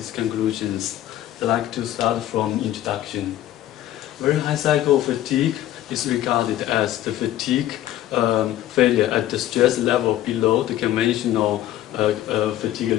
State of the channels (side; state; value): right; quieter; 13.2 dB